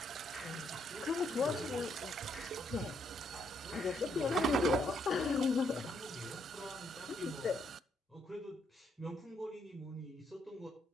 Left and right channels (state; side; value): normal; both; correlation 0.74